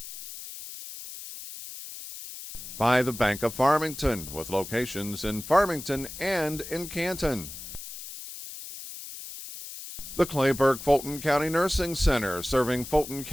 By the Bank of Farmington, with locations in Farmington and in Canton. The Clayburgh Fulton County Nursing Center, serving Fulton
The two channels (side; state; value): left; noise; hiss, 11 dB below the sound